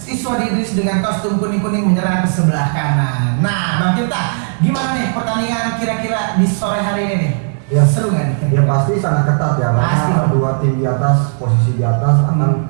Idris dengan kostum kuning-kuning menyerang ke sebelah kanan. Nah, Bang Tirta, gimana nih pertandingan kira-kira di sore hari ini nih? Ya, seru nggak nih? Ya pasti sangat ketat ya, Pasti. karena dua tim di atas, posisi di atas akan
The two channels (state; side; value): silent; left; 67 dB below the other